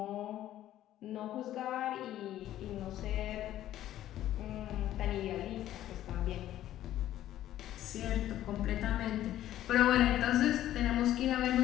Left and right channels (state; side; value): quieter; right; 12.9 dB